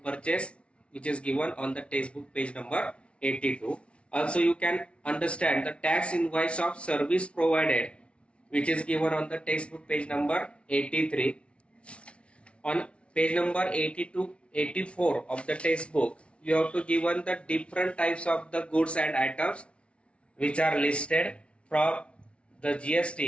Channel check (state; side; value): late; right; 0.060 ms